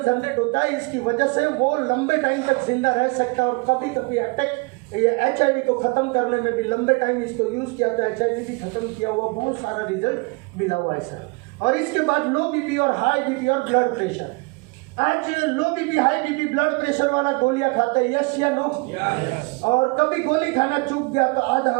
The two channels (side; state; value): left; quieter; 28.9 dB